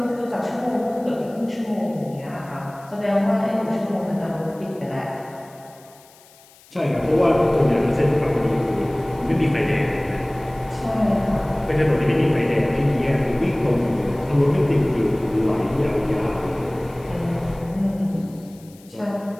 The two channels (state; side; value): noise; left; hiss, 26 dB below the sound